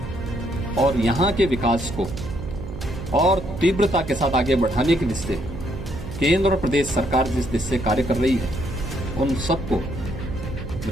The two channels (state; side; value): noise; right; hum, 10 dB below the sound